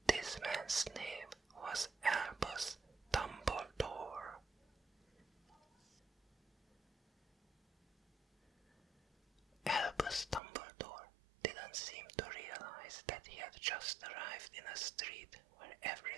This man's name was Albus Dumbledore. Albus Dumbledore didn't seem to realize that he had just arrived in a street where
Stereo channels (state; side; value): drops out; left; at 10.4 s